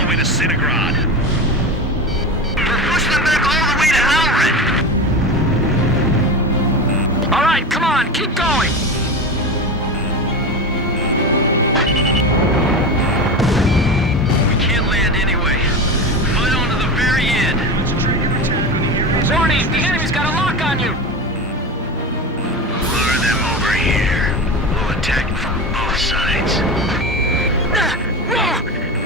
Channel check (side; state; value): both; normal; correlation 0.24